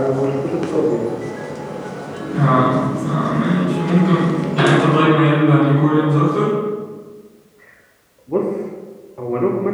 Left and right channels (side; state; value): both; identical; correlation 1.00